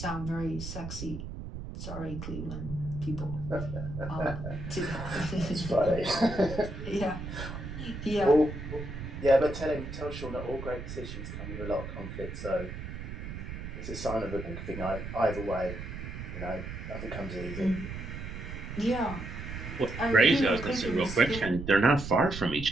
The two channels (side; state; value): right; noise; rumble, 8 dB below the sound